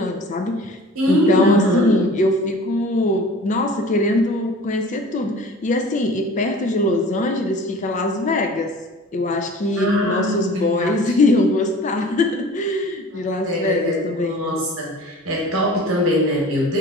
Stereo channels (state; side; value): normal; both; correlation 0.43